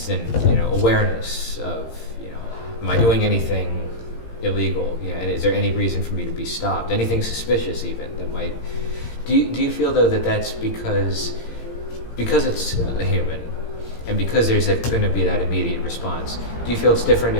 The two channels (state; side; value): late; right; 17 ms